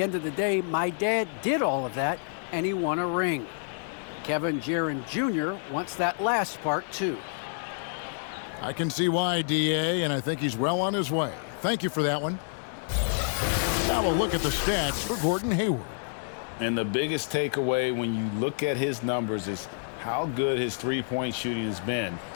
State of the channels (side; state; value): right; silent; digital silence